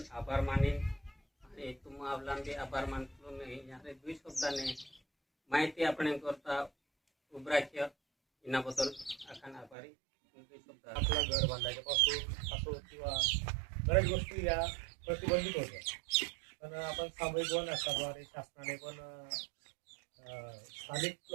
आभार माने आणि तुम आवला बी आभार मानतो मी यारे 2 शब्दाने माहिती आपण करता उभराख्य इनाबद्दल आखान आभारी। आपलं घर बांधायच्यापासून असो किंवा बऱ्याच गोष्टी या प्रतिबंधित होत्या, पण आपण सामूहिक वन हक्काद्वारे शासनाने पण स्थानिक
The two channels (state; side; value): drops out; left; at 9.8 s